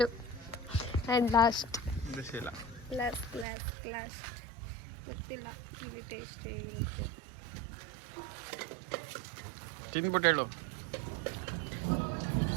ಗೊತ್ತಿಲ್ಲ, ಇಲ್ಲಿ ಟೇಸ್ಟ್ ಹೇಗಿರುತ್ತೆ ತಿಂದ್ಬಿಟ್ಟು ಹೇಳು.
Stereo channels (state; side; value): drops out; left; at 3.5 s